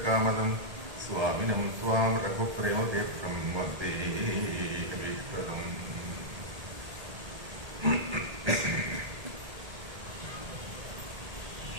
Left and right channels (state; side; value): late; left; 1.8 ms